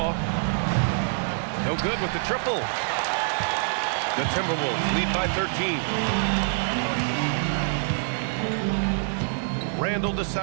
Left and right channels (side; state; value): left; silent; digital silence